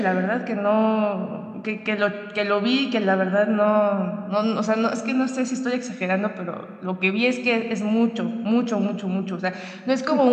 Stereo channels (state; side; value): identical; both; correlation 1.00